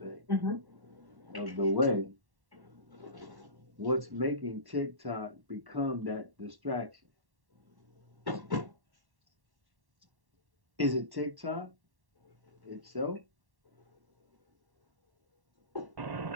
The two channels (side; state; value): left; late; 1.1 ms